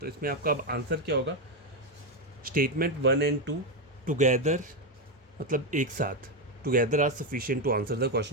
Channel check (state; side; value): normal; both; correlation 0.08